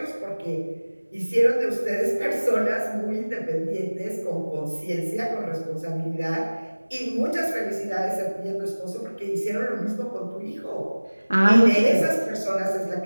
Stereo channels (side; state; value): both; inverted; correlation -1.00